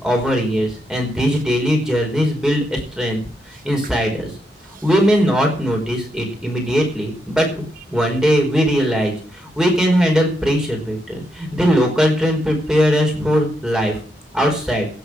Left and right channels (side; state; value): both; normal; correlation 0.81